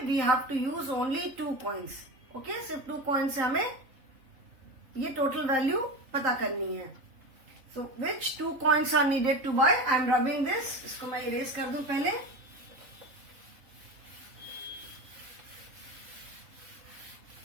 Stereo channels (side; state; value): left; late; 3.8 ms